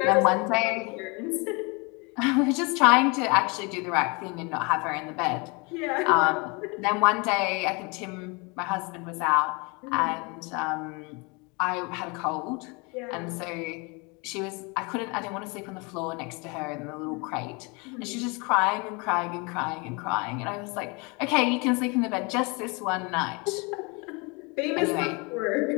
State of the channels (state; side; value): quieter; right; 29.3 dB